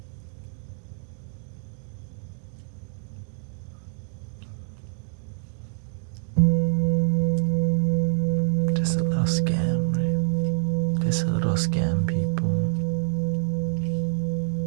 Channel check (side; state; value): left; silent; digital silence